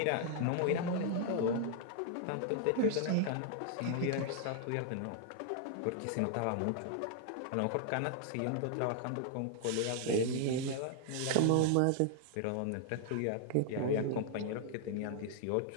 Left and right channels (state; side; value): different; both; correlation 0.00